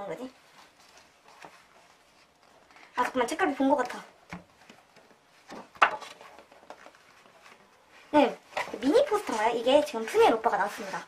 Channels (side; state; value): both; identical; correlation 1.00